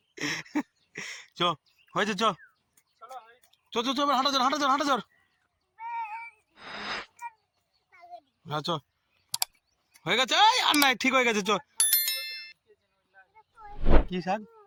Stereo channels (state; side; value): identical; both; correlation 1.00